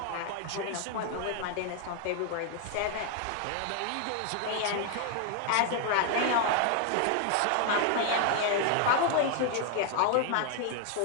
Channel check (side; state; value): both; different; correlation 0.00